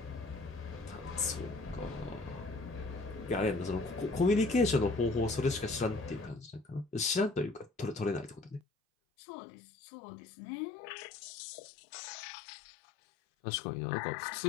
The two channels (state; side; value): drops out; right; at 8.6 s